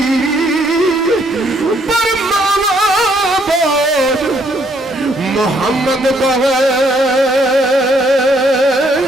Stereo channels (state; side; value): normal; both; correlation 0.69